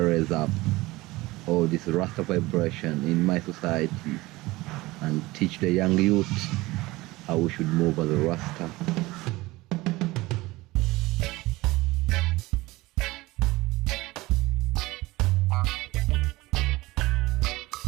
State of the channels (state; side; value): quieter; left; 20.2 dB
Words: up all this Rasta vibration in my society and teach the young youth how we should move as a Rasta.